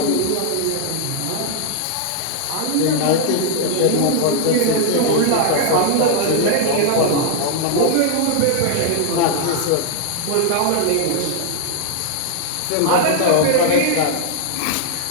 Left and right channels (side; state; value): both; different; correlation 0.00